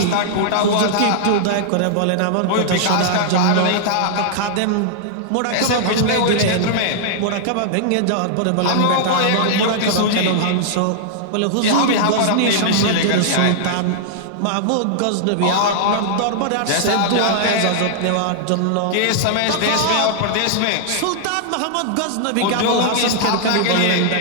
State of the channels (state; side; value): different; both; correlation -0.01